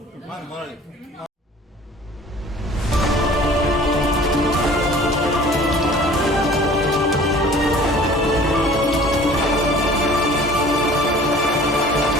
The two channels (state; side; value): normal; both; correlation 0.47